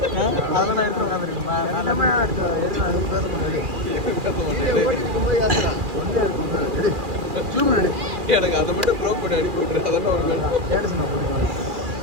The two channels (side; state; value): left; late; 2.4 ms